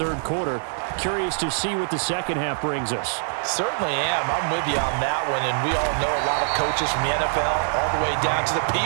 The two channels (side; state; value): left; silent; 60 dB below the other